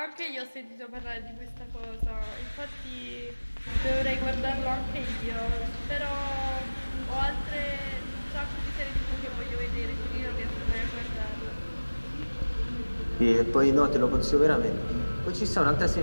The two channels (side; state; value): both; inverted; correlation -1.00